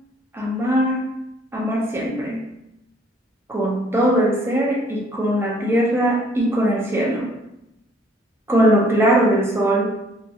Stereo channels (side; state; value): both; normal; correlation 0.60